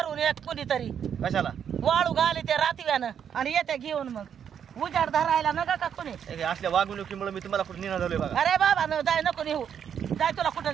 एक कुणीतरी कशाला वाळू घाली ते रातव्यानं आणि येते घेऊन मग उजाड धरायला नका का कुणी हे असल्या वागणुकीमुळे मी तुम्हाला कुठे निघा झालोय बघा अरे बाबा न जाय नको नेऊ जाय तुला कुठं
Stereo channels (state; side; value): quieter; left; 8.3 dB